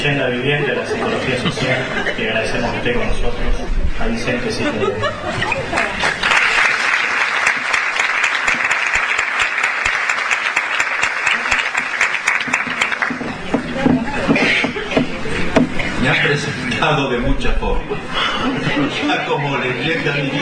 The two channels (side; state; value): both; identical; correlation 1.00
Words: viviente de la psicología social, que agradecemos que esté con nosotros, a Vicente Ciclón. Me han presentado de muchas formas, ya como leyenda